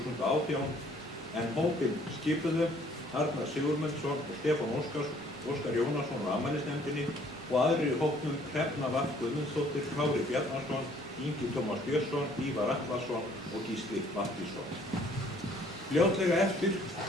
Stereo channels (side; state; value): both; normal; correlation 0.60